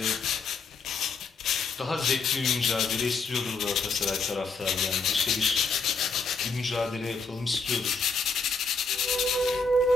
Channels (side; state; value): right; quieter; 4.5 dB